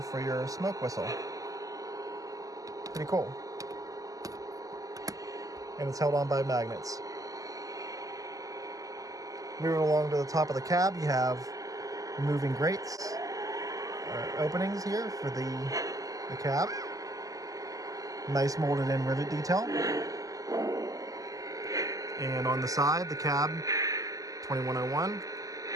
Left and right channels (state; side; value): late; left; 0.17 ms